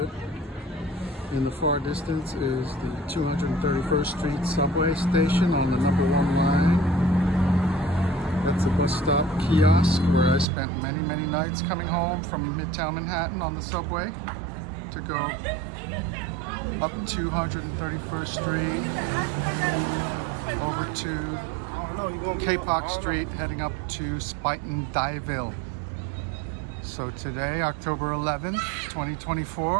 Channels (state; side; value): drops out; left; at 10.5 s